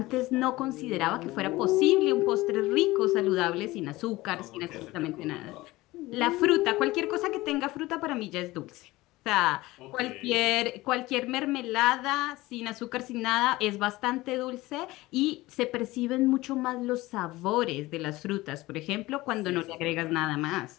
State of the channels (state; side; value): quieter; right; 19.2 dB